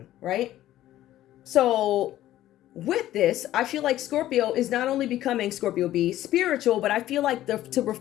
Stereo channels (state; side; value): quieter; right; 13.8 dB